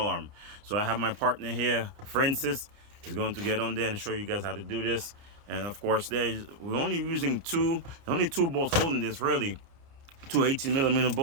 arm. So I have my partner here, Francis. He's going to get on there and show you guys how to do this. And of course, we're only using only two bolts holding this, really. Two 18mm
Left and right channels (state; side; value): late; left; 29 ms